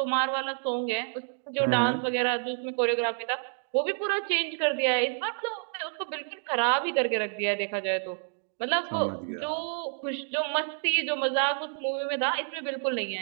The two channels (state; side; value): silent; left; 59 dB below the other